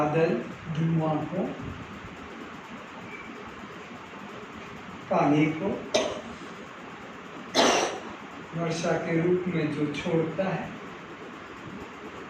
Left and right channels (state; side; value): identical; both; correlation 1.00